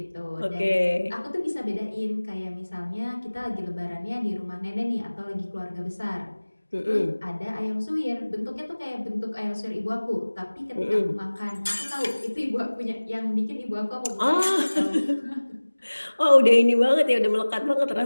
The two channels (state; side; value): inverted; both; correlation -1.00